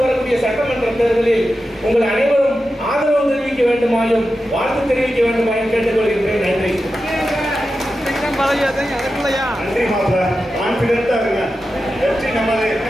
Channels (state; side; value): normal; both; correlation 0.91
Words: வரக்கூடிய சட்டமன்ற தேர்தலில் உங்கள் அனைவரும் ஆதரவு தெரிவிக்க வேண்டுமாயும் வாழ்த்து தெரிவிக்க வேண்டுமாயும் கேட்டுக்கொள்கின்றேன். நன்றி. நன்றி மாப்பிள்ள, கான்பிடென்டா இருங்க. வெற்றி நமது.